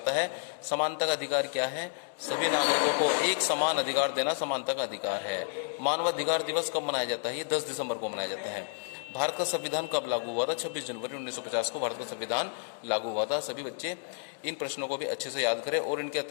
है। समानता का अधिकार क्या है? सभी नागरिकों को एक समान अधिकार देना समानता का अधिकार है। मानवाधिकार दिवस कब मनाया जाता है? ये 10 दिसंबर को मनाया जाता है। भारत का संविधान कब लागू हुआ था? 26 जनवरी 1950 को भारत का संविधान लागू हुआ था। सभी बच्चे इन प्रश्नों को भी अच्छे से याद करें, और इनके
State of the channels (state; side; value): silent; right; digital silence